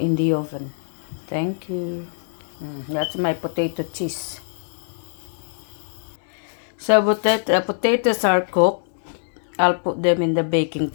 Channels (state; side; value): silent; right; digital silence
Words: the oven. Thank you. That's my potato cheese. So potatoes are cooked. I'll put them in the baking